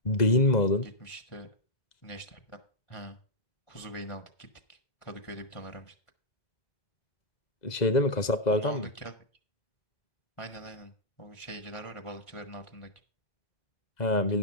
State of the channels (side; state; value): right; late; 2.0 ms